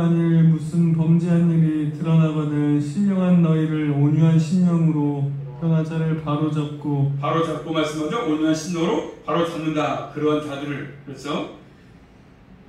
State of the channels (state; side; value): identical; both; correlation 1.00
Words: 무슨 범죄한 일이 드러나거든 신령한 너희를 온유한 심령으로 변화자를 바로잡고 말씀하죠. 온유한 심령으로 바로 잡는다. 그러한 자들을. 그렇죠?